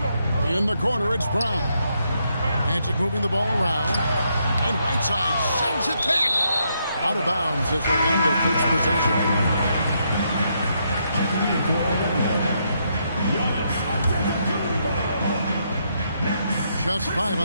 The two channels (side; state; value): both; inverted; correlation -0.77